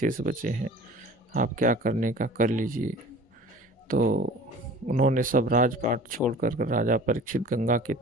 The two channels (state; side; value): normal; both; correlation 0.43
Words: बचे हैं, आप क्या करने का कर लीजिए, तो उन्होंने सब राजपाट छोड़कर राजा परीक्षित गंगा के